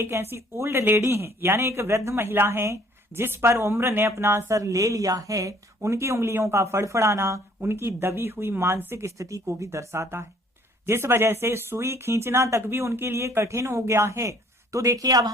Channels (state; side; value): normal; both; correlation 0.58